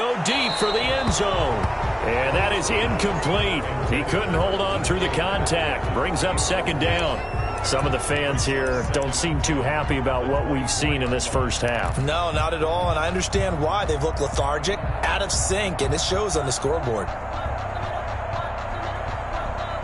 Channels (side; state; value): both; identical; correlation 1.00